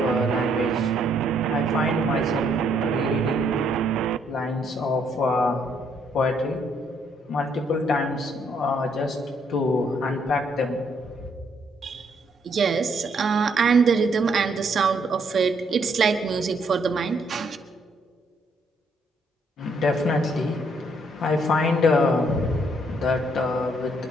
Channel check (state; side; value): normal; both; correlation 0.71